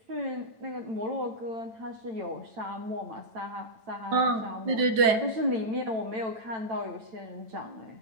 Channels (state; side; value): late; left; 8.9 ms